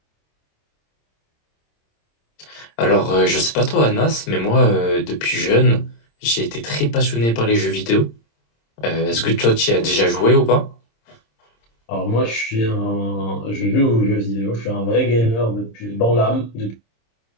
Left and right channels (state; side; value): late; right; 26 ms